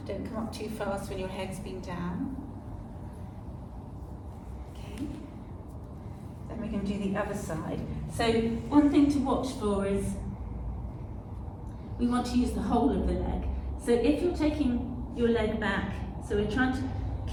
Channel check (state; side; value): identical; both; correlation 1.00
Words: Don't come up too fast when your head's been down. Okay. Then we're going to do the other side. So one thing to watch for is we want to use the whole of the leg. So if you're taking your leg back So we're trying to